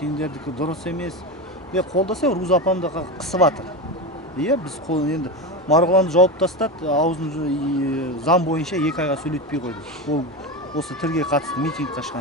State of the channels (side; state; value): both; normal; correlation 0.19